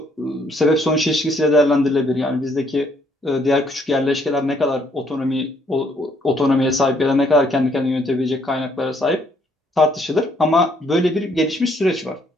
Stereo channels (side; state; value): both; normal; correlation 0.68